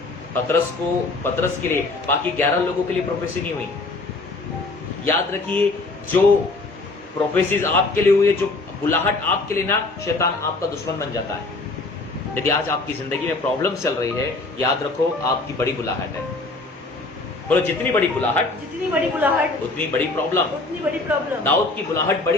पतरस के लिए, बाकी 11 लोगों के लिए प्रोफेसी नहीं हुई। याद रखिए, जो प्रोफेसीज आपके लिए हुई है, जो बुलाहट आपके लिए ना, शैतान आपका दुश्मन बन जाता है। यदि आज आपकी जिंदगी में प्रॉब्लम चल रही है, याद रखो आपकी बड़ी बुलाहट है। बोलो जितनी बड़ी बुलाहट उतनी बड़ी प्रॉब्लम। दाऊद की बुलाहट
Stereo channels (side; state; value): right; quieter; 3.3 dB